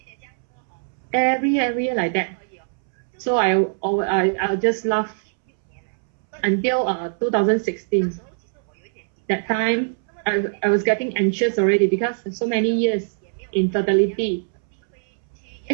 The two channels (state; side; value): silent; left; 64 dB below the other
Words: Every year like that. So I'll just laugh until 2016. That time, I was getting anxious already because so many years infertility.